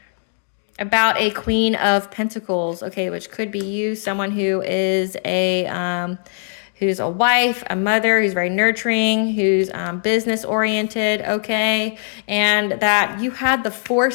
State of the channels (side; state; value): right; silent; digital silence